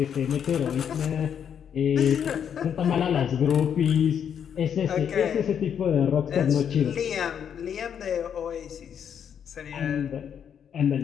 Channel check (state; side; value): quieter; right; 8.3 dB